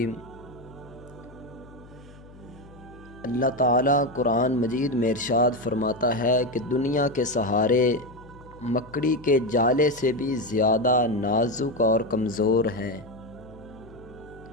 اللہ تعالیٰ قرآن مجید میں ارشاد فرماتا ہے کہ دنیا کے سہارے مکڑی کے جالے سے بھی زیادہ نازک اور کمزور ہیں۔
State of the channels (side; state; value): left; noise; hum, 21 dB below the sound